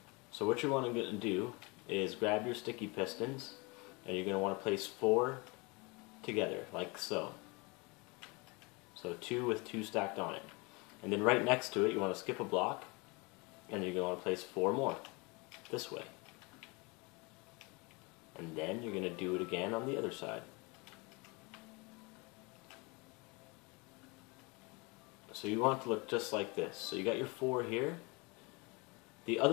So what you want to do is grab your sticky pistons, and you're going to want to place 4 together, like so. So 2 with 2 stacked on it. And then right next to it, you want to skip a block, and you're going to want to place 4 more, this way. And then you're going to do it again on the other side. So you want it to look just like this. So you got your 4 here. The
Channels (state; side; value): quieter; right; 27.7 dB